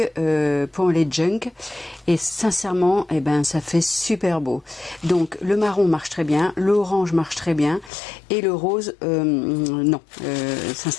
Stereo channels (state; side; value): drops out; right; at 7.9 s